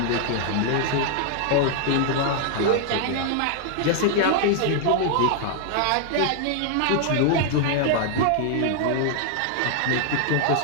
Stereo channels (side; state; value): both; different; correlation 0.00